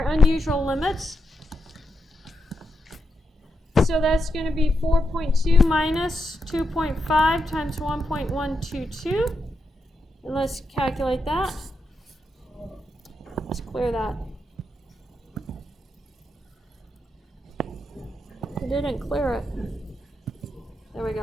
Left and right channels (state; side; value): normal; both; correlation 0.85